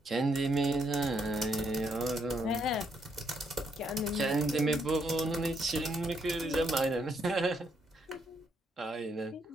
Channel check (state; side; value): normal; both; correlation 0.74